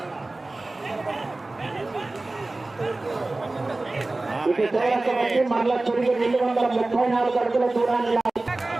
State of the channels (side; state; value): left; quieter; 3.0 dB